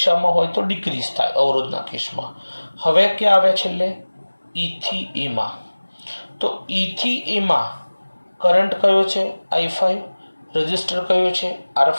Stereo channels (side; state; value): both; inverted; correlation -1.00